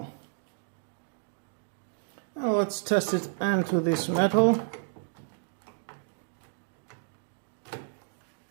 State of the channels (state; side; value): silent; left; digital silence